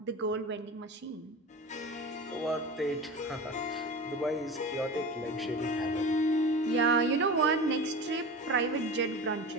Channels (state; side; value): normal; both; correlation 0.31